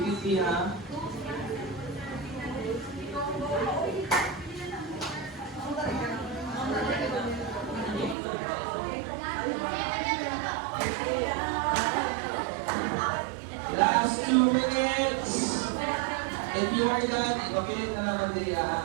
ha. Last 2 minutes. If you are done, ipapilit na naman din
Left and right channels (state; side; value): drops out; left; at 8.2 s